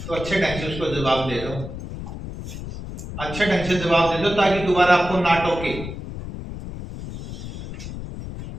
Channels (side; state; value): left; noise; rumble, 9 dB below the sound